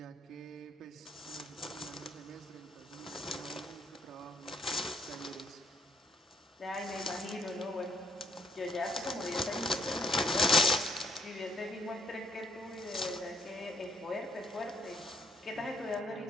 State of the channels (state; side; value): normal; both; correlation 0.65